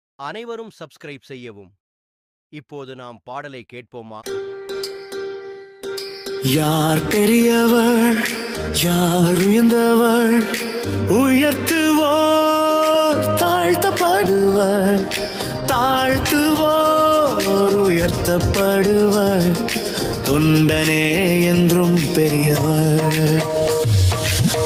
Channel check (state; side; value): identical; both; correlation 1.00